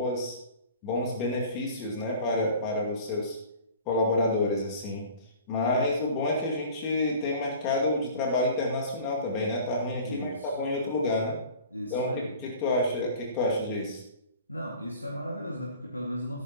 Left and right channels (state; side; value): inverted; both; correlation -0.44